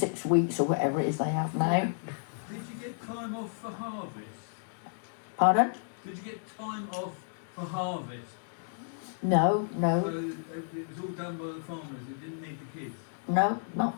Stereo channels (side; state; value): right; silent; digital silence